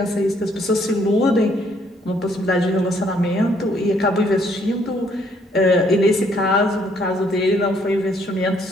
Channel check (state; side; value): normal; both; correlation 0.67